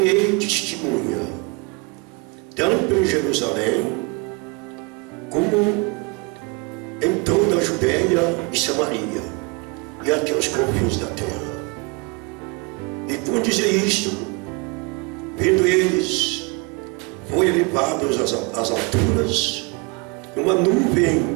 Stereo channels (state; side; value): quieter; left; 29.2 dB